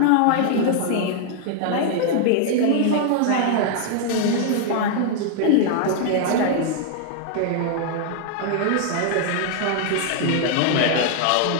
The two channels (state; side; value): different; both; correlation -0.01